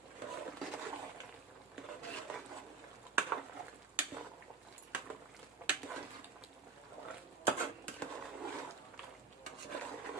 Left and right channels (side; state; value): left; quieter; 5.0 dB